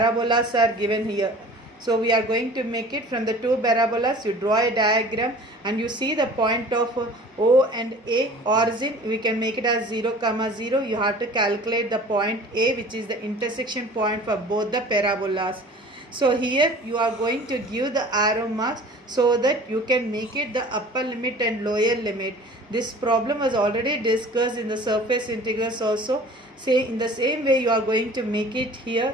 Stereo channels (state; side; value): normal; both; correlation 0.45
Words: are given here. So we are going to make it from the two parabolas. You draw a diagram and you see the point of O and A origin. We can make it as 0, 0. You have to calculate the point A, which is the intersection point for both the parabolas. So here you are going to give the arrow marks so that you can make it the upper limit and lower limit. This problem was already discussed in the surface integrals also. Say in the same way you are going to make it